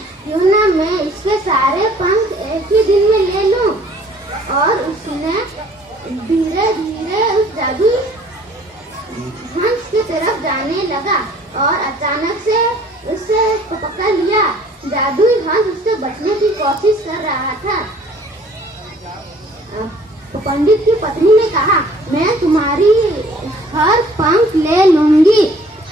क्यों ना मैं इसके सारे पंख एक ही दिन में ले लूं। और उसने धीरे धीरे उस जादुई हंस की तरफ जाने लगा और अचानक से उसे पकड़ लिया। जादुई हंस उससे बचने की कोशिश कर रहा था। पंडित की पत्नी ने कहा, मैं तुम्हारी हर पंख ले लूंगी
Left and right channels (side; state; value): both; normal; correlation 0.55